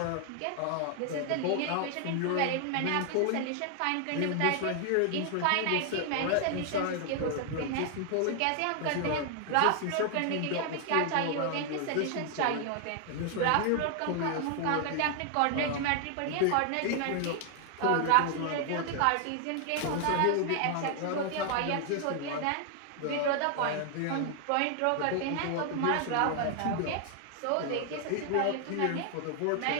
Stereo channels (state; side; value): different; both; correlation 0.00